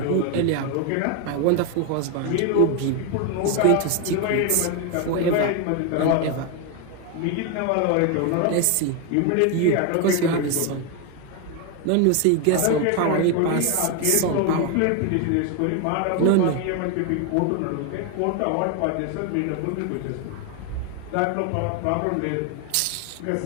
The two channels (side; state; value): both; different; correlation 0.01